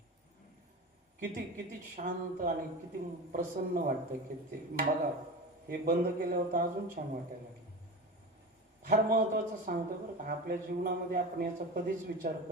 किती किती शांत आणि किती प्रसन्न वाटतं. किती बघा. हे बंद केल्यावर तर अजून छान वाटायला लागलं. फार महत्वाचं सांगतो बरं का. आपल्या जीवनामध्ये आपण याचा कधीच विचार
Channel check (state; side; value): normal; both; correlation 0.28